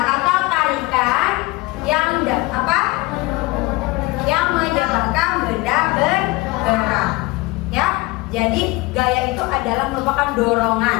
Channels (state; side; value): quieter; right; 22.3 dB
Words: atau tarikan yang yang menyebabkan benda bergerak. Ya, jadi gaya itu adalah merupakan